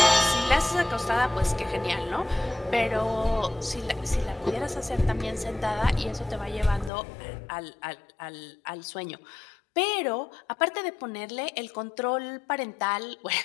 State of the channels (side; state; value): right; drops out; at 6.9 s